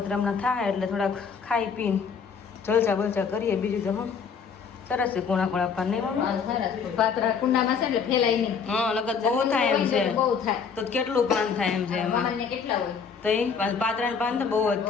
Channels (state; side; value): quieter; right; 6.1 dB